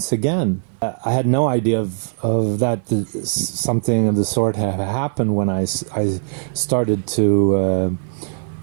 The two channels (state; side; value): silent; left; 56 dB below the other